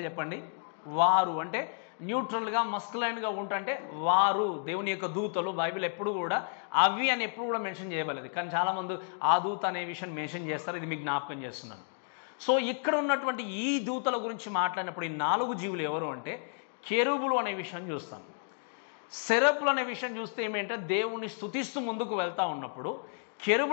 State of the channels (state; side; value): silent; right; 57 dB below the other